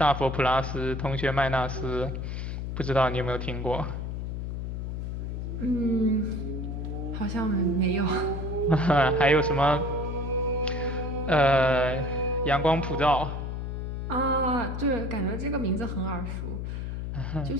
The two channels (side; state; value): left; noise; hum, 4 dB below the sound